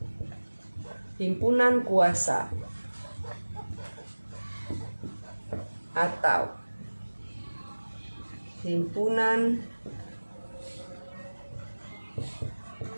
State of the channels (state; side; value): inverted; both; correlation -1.00